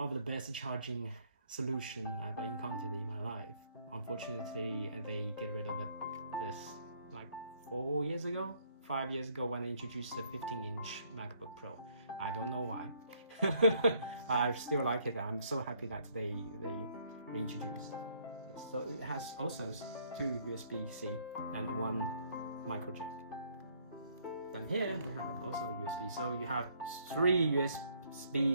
of the best charging solution I've encountered in my life. Unfortunately, they get rid of this like 5 years ago when they introduced the 15-inch MacBook Pro. I don't know why. I still like it. I'm so happy that they introduced. So it has also 2 USB-C and 1 micro jack. Then here we have also USB. So you have 3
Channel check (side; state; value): both; inverted; correlation -0.66